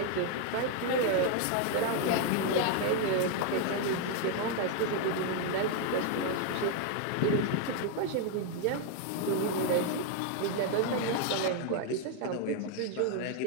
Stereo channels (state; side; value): different; both; correlation 0.00